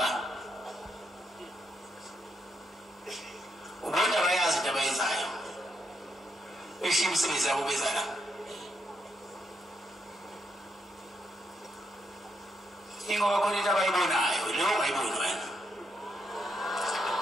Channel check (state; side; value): normal; both; correlation 0.79